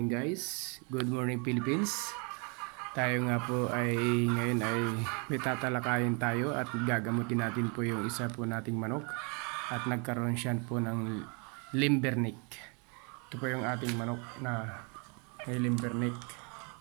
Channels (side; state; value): left; quieter; 34.5 dB